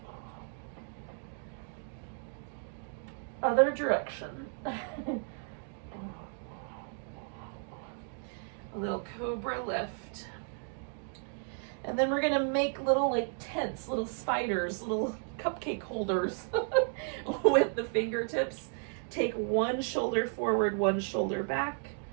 Other direction. A little cobra lift. And then we're going to make little like tents, little spiders, little cupcake holders with the fingertips. Take one shoulder forward, one shoulder back,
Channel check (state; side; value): silent; left; 55 dB below the other